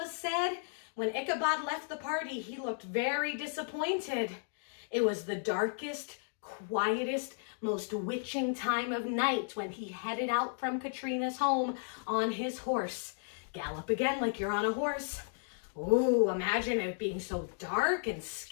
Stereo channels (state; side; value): silent; right; digital silence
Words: said, when Ichabod left the party, he looked very disappointed. It was the darkest, quietest, most witching time of night when he headed out from Katrina's home on his horse. Gallop again like you're on a horse. Ooh, imagine it being so dark and